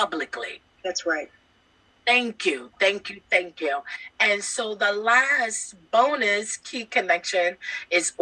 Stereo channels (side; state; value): both; identical; correlation 1.00